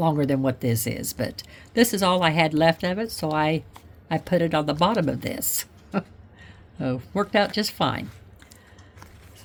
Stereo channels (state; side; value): identical; both; correlation 1.00